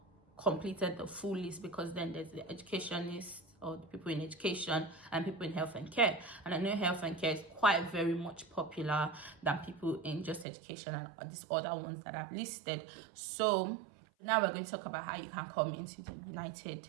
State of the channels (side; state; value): left; drops out; at 10.5 s